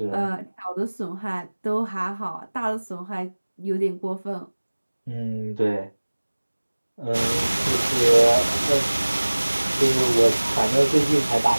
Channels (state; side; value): inverted; both; correlation -1.00